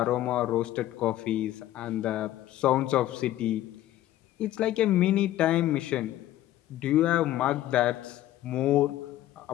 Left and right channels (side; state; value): right; quieter; 13.9 dB